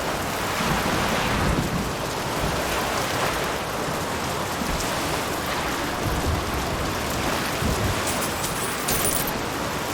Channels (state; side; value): identical; both; correlation 1.00